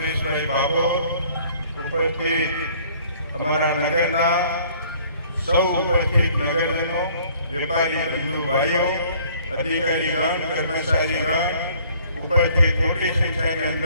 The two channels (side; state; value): both; inverted; correlation -0.57